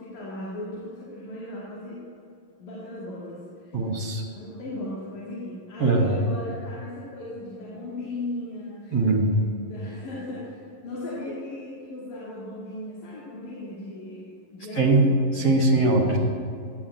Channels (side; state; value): right; late; 11 ms